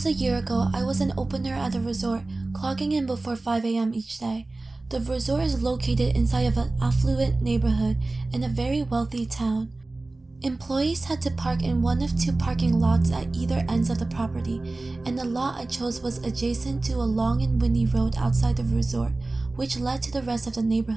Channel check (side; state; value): left; quieter; 3.1 dB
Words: a year ago, I was an opener at the resort, clocking in before 5 a.m. each day. The resort is located inside of an affluent neighborhood in a very wealthy town. Employees had to park in one of two parking lots at either ends of the property, and the lot I chose was adjacent to a long and windy road outside the resort, which led to the rest of the